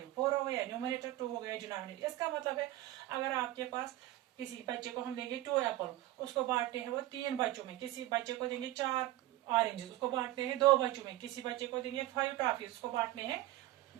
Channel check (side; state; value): left; quieter; 15.9 dB